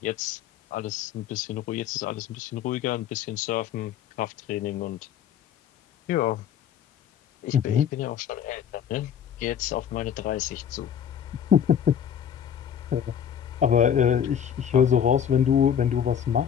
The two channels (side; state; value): right; quieter; 8.8 dB